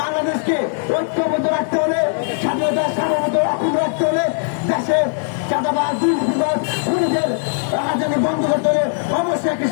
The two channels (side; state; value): right; silent; digital silence